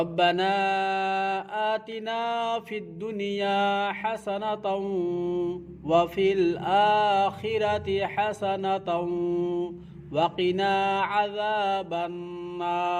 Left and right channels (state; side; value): identical; both; correlation 1.00